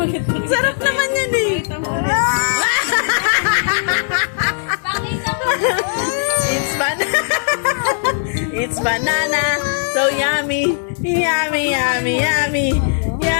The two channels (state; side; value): silent; right; 62 dB below the other